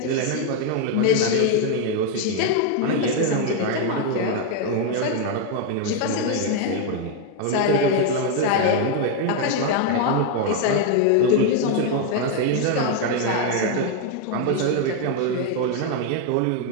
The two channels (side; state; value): both; different; correlation 0.01